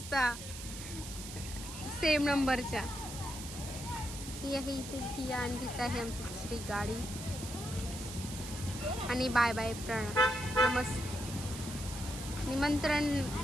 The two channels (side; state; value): right; noise; hiss, 10 dB below the sound